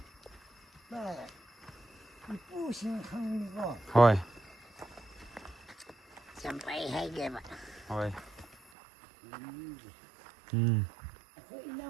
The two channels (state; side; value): drops out; left; at 8.6 s